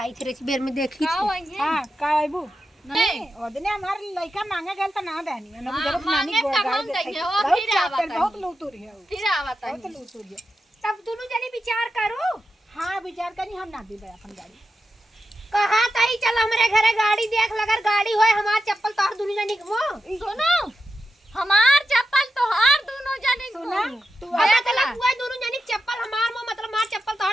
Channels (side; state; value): both; normal; correlation 0.89